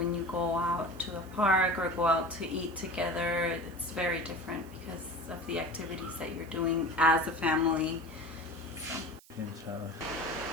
you go out to a park or go out to eat together. It's very different because of the activities that you're doing as a family. So.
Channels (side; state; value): right; noise; hiss, 24 dB below the sound